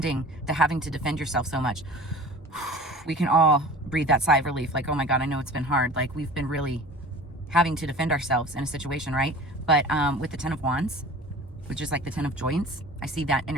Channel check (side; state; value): both; normal; correlation 0.40